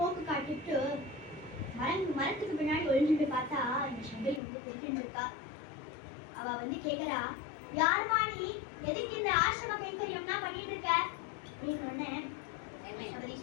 காட்டிட்டு மரத்துக்கு பின்னாடி ஒழிஞ்சுட்டு பார்த்தா இந்த சபரி வந்து தெரிஞ்சுட்டு இருக்கா. அவ வந்து கேக்குறா, யாருமா நீ, எதுக்கு இந்த ஆசிரம கைங்கரியம்னா பண்ணிட்டு இருக்க அப்படின்னு. சபரி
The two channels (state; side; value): drops out; right; at 4.4 s